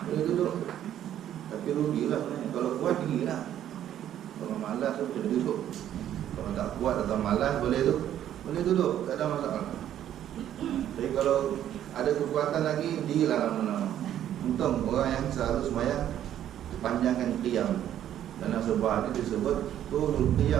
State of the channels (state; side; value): quieter; left; 11.1 dB